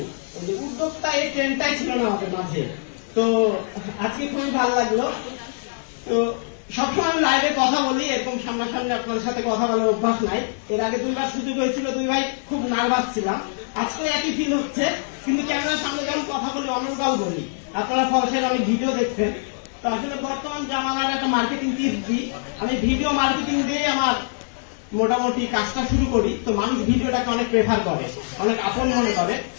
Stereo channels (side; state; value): right; silent; digital silence